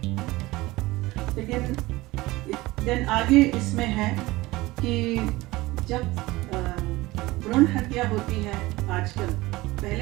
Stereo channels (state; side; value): quieter; left; 19.8 dB